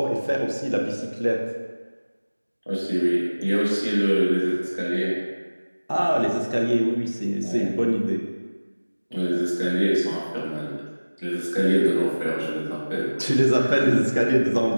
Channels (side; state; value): both; inverted; correlation -1.00